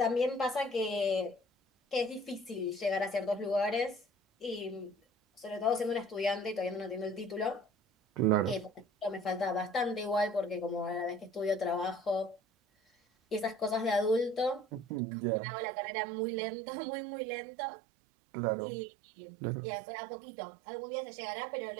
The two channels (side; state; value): left; drops out; at 15.0 s